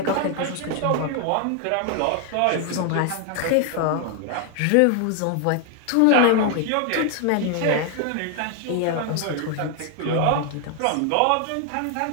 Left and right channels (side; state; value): both; different; correlation 0.00